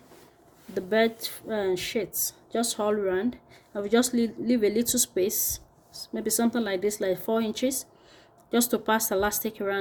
the bed sheets, just all round. I will just leave a little space, maybe something like this, like 4 inches, just to pass elastic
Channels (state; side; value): identical; both; correlation 1.00